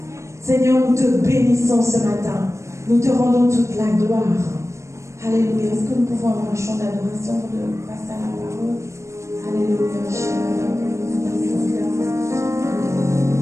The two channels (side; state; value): left; late; 0.14 ms